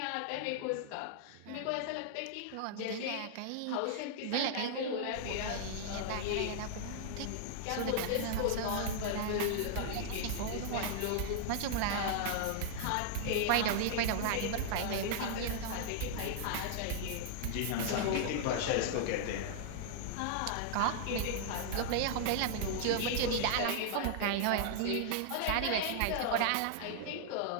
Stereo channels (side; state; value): both; different; correlation -0.01